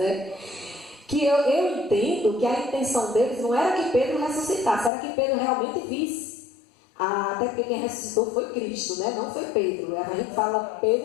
Que eu entendo que a intenção deles não era que Pedro ressuscitasse, era que Pedro realmente visse. Até porque quem ressuscitou foi Cristo, né? Não foi Pedro. A gente fala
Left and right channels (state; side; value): drops out; right; at 4.9 s